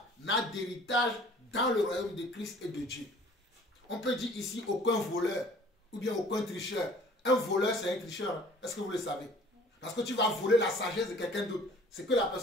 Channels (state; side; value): normal; both; correlation 0.51